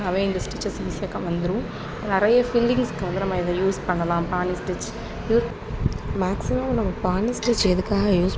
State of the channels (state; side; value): identical; both; correlation 1.00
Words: இந்த ஸ்டிச்சஸ் ஈஸியாக வந்துடும். நிறைய ஃபில்லிங்ஸ்க்கு வந்து நம்ம இதை யூஸ் பண்ணலாம். பானி ஸ்டிச் மேக்ஸிமம் நம்ம பானி ஸ்டிச் எதுக்காக யூஸ்